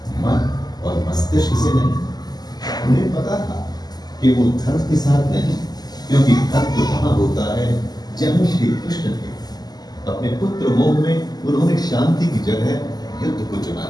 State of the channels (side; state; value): right; late; 0.20 ms